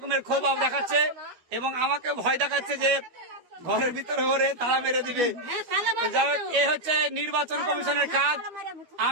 ক্ষোভ দেখাচ্ছে এবং আমাকে ভয় দেখাচ্ছে যে ঘরের ভিতরে ঘরে তালা মেরে দিবে। যাই হোক, এ হচ্ছে নির্বাচন কমিশনের কাজ।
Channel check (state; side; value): late; left; 12 ms